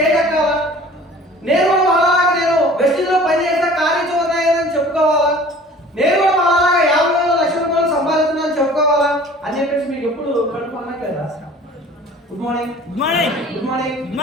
ఎక్కాలా, నేను కూడా అలాగా నేను వెస్టిజ్లో పనిచేసిన కార్యచూర్ణని చెప్పుకోవాలా, నేను కూడా అలాగా 50,000 లక్షల రూపాయలు సంపాదిస్తున్నాను చెప్పుకోవాలా అని చెప్పేసి మీకు ఎప్పుడు కడుపు అనట్లేదా? Good morning. Good morning. Good morning. Good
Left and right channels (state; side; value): normal; both; correlation 0.46